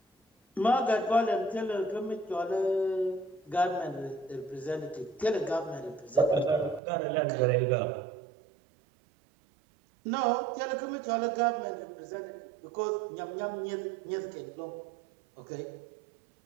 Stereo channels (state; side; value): drops out; left; at 6.8 s